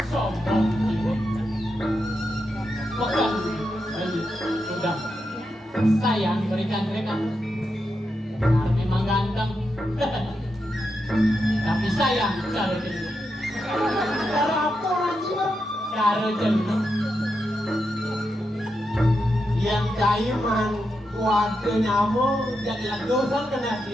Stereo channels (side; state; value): both; normal; correlation 0.86